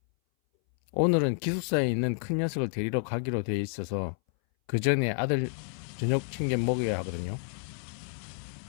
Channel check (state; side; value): silent; right; 58 dB below the other